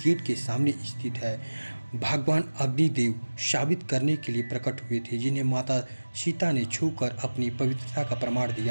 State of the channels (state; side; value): inverted; both; correlation -1.00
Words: के सामने स्थित है। भगवान अग्निदेव साबित करने के लिए प्रकट हुए थे, जिन्हें माता सीता ने छूकर अपनी पवित्रता का प्रमाण